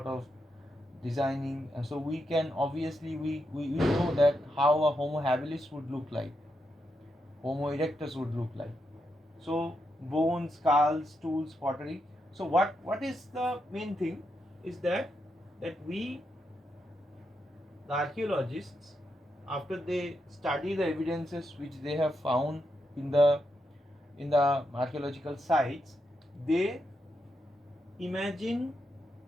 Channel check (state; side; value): normal; both; correlation 0.83